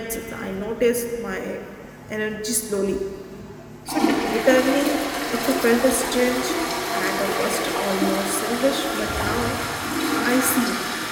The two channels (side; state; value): both; identical; correlation 1.00